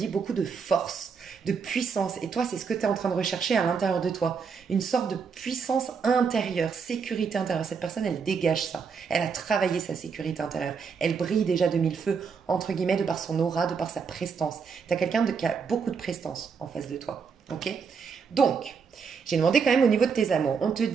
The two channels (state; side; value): quieter; left; 5.8 dB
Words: beaucoup de force, de puissance. Et toi, c'est ce que tu es en train de rechercher à l'intérieur de toi. Une sorte de puissance intérieure, sécurité intérieure. Cette personne, elle dégage ça. Elle a travaillé sa sécurité intérieure. Elle brille déjà de mille feux, entre guillemets, de par son aura, de par sa prestance. Tu as quelqu'un qui a beaucoup de prestance en face de toi. Ok? Donc, j'ai demandé quand même au niveau de tes amours. On te